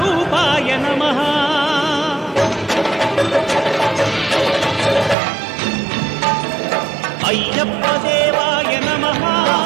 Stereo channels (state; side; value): drops out; left; at 5.2 s